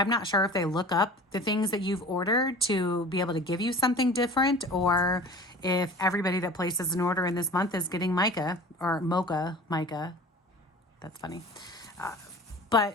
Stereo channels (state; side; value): normal; both; correlation 0.41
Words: not sure if they look up the things that you've ordered to be able to give you something different, or if everybody that places an order in this month is getting mica or mocha mica. That's funny.